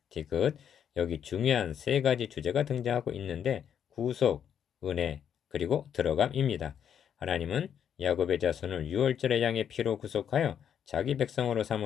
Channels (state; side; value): quieter; right; 8.6 dB